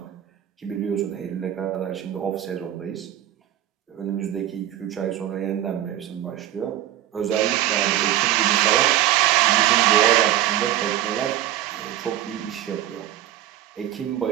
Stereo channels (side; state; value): left; quieter; 12.7 dB